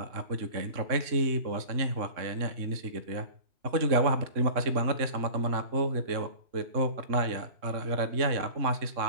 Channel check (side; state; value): left; late; 3.6 ms